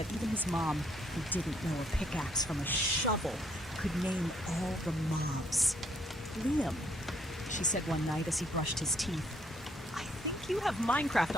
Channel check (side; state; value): both; normal; correlation 0.68